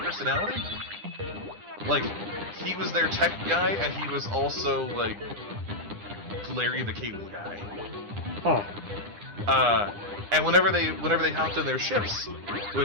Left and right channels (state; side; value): late; left; 9.9 ms